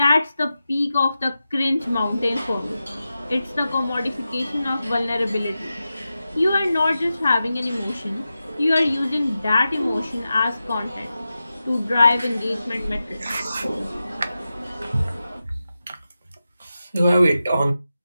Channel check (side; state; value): both; inverted; correlation -0.92